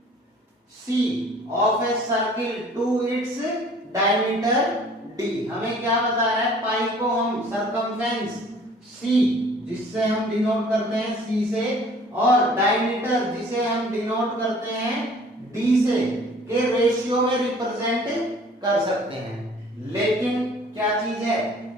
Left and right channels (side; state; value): both; normal; correlation 0.53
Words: C of a circle to its diameter D। हमें क्या बता रहा है? पाई को हम सरकमफेरेंस C जिससे हम डिनोट करते हैं C से, और डायमीटर जिसे हम डिनोट करते हैं D से के रेशियो में रिप्रेजेंट कर सकते हैं। लेकिन क्या चीज है?